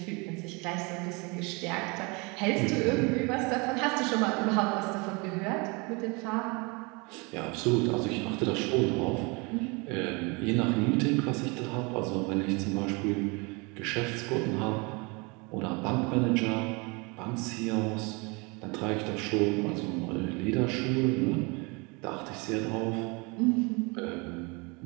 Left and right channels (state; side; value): quieter; left; 28.8 dB